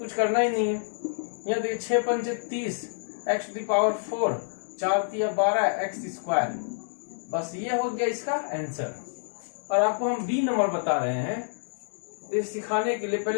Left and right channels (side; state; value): right; silent; digital silence